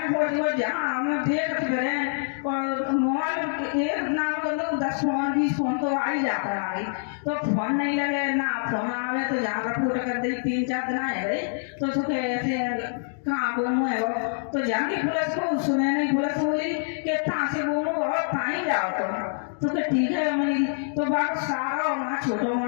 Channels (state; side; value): silent; right; digital silence